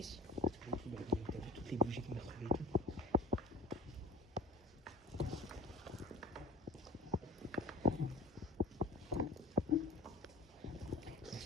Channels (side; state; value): both; normal; correlation 0.41